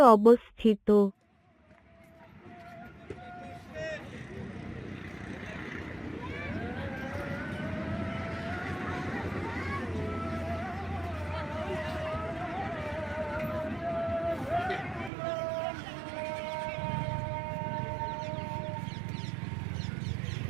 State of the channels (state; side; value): drops out; left; at 15.1 s